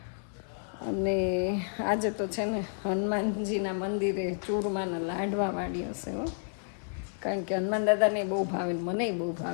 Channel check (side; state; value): right; silent; digital silence